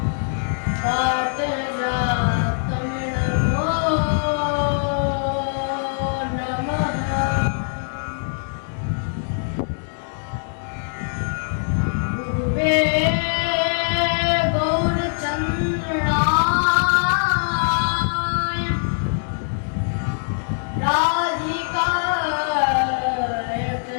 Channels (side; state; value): right; silent; digital silence